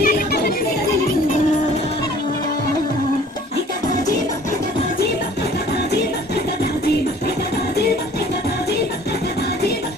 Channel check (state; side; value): normal; both; correlation 0.52